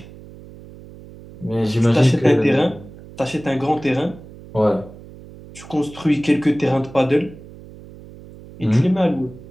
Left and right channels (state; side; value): noise; right; hum, 18 dB below the sound